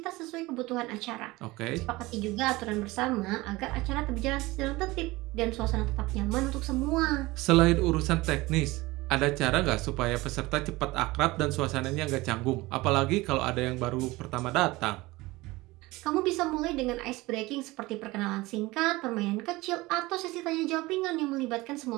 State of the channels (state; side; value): quieter; left; 20.7 dB